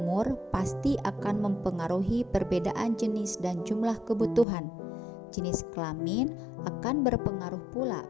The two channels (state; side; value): drops out; right; at 4.5 s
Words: pasti akan mempengaruhi perbedaan jenis dan jumlah kebutuhan. Jenis kelamin akan berpengaruh pula